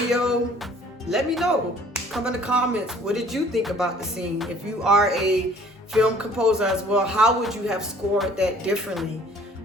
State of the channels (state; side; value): normal; both; correlation 0.54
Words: let me know. Come in the comments, what did you think about the scene? If you are a film composer as well, how would you have scored that differently?